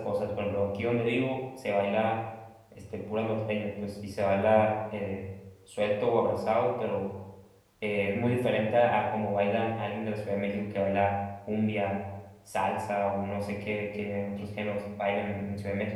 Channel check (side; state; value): both; identical; correlation 1.00